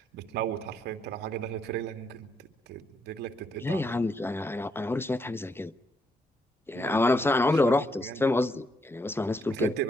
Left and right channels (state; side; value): normal; both; correlation 0.75